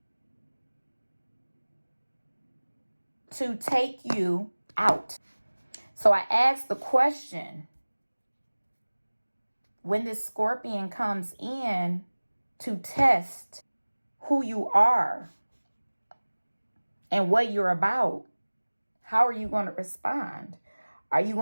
to take you out. So I asked the question, when this scorpion comes in to test who you are and what you're about, how are you going to respond? Are you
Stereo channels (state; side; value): inverted; both; correlation -1.00